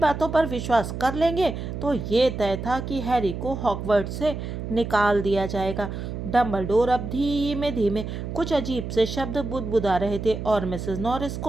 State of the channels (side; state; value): right; noise; hum, 6 dB below the sound